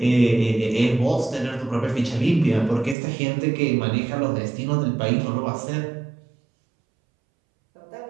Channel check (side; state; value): left; drops out; at 3.0 s